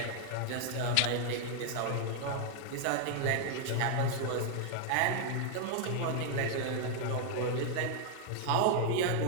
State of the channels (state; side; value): different; both; correlation 0.00